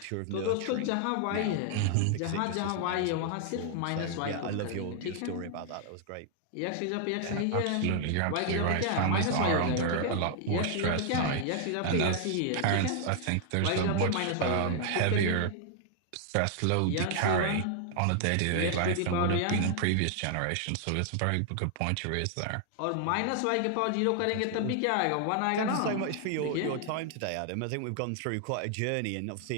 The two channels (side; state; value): both; different; correlation 0.00